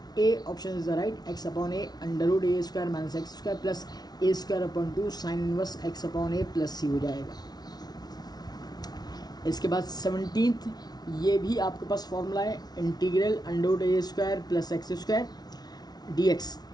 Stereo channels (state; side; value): late; right; 0.19 ms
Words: A option is the right, x upon a under a square minus x square plus a square upon 2 sine inverse x upon a plus c हो जाएगा। इसके बाद 17th, ये भी आपके पास formula है integral under a square plus x square dx,